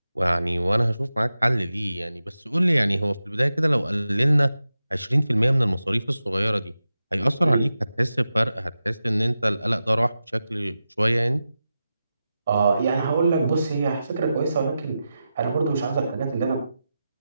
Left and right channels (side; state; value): both; inverted; correlation -0.92